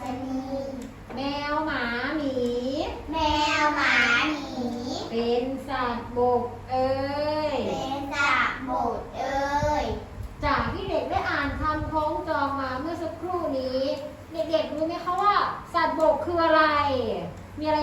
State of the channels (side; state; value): both; identical; correlation 1.00